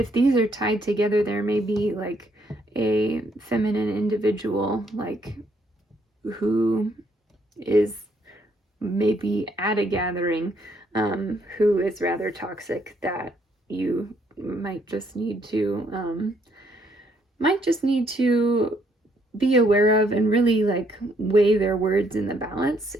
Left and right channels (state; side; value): normal; both; correlation 0.70